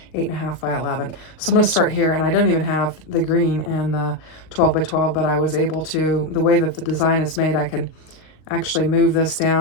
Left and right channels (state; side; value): late; right; 39 ms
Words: 8.5 by 11. So I'm going to start here, and I don't even have the green in the 12 by 12, but I was able to, the way that the design is made, I can actually move this